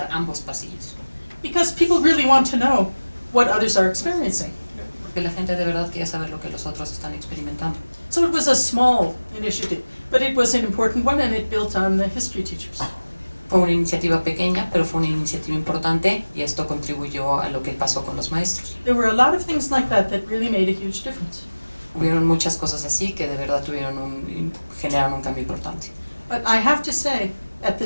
ambos pasillos. Because people really want to know what others are experiencing. Porque la gente de verdad quiere saber lo que los otros están experimentando. So it was a small initiative, but it was an important one, and it built on the history teachers. Fue una iniciativa pequeña, pero fue una iniciativa importante, y esto contribuyó a lo que pasó con los maestros. There were a lot of things like that that really made a huge difference. Hubieron muchas cosas así que de verdad generaron un cambio importante. But I have to say, at the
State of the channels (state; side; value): inverted; both; correlation -1.00